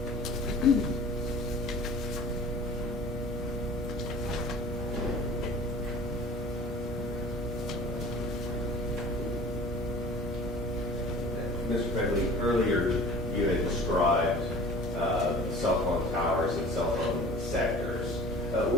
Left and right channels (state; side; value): normal; both; correlation 0.44